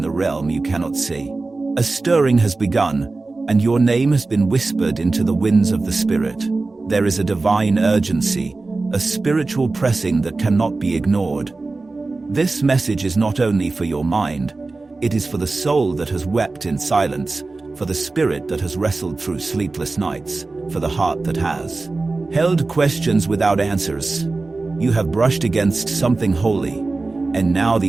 the realm you cannot see. A stirring has begun, and your name has been whispered into the winds of the Spirit. There is a divine urgency, a spiritual pressing that cannot be ignored. This message is not only for your mind, it is for the soul that has wept in silence, for the spirit that has wrestled through sleepless nights, for the heart that has held questions without answers. You have brushed against something holy, and now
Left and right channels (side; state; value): left; quieter; 3.5 dB